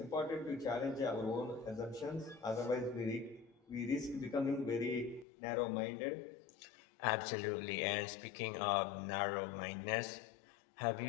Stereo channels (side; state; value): right; drops out; at 5.2 s